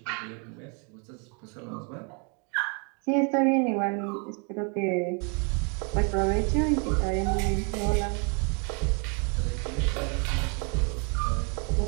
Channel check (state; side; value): quieter; left; 36.2 dB